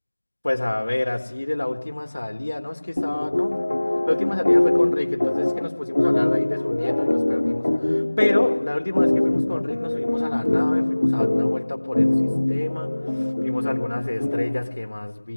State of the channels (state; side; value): inverted; both; correlation -1.00